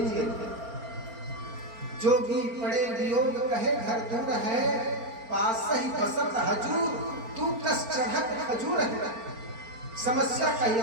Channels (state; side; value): late; left; 4.4 ms